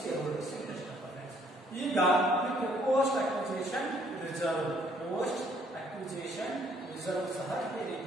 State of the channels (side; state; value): both; normal; correlation 0.65